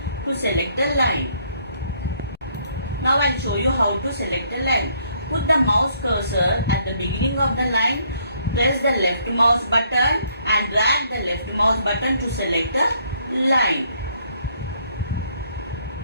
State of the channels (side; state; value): both; inverted; correlation -0.67